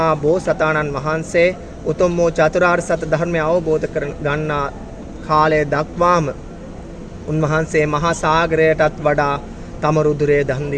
බෝසතාණන් වහන්සේ උතුම් වූ චතුරාර්ය සත්‍ය ධර්මය අවබෝධ කර ගන්නා කාලය දක්වාම උන්වහන්සේ මහා සාගරයටත් වඩා තම රුධිරය දන්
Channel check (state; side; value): identical; both; correlation 1.00